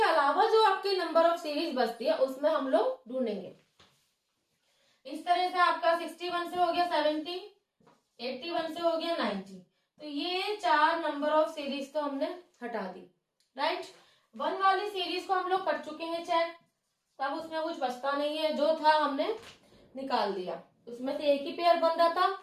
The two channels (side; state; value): both; identical; correlation 1.00